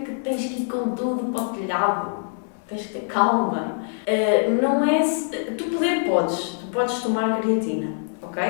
tens que ir com tudo para o telhado. Tens que ter calma. Não é... Tu podes tomar creatina, ok?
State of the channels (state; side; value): silent; right; 63 dB below the other